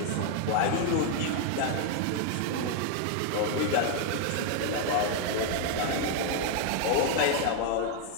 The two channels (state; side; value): different; both; correlation 0.00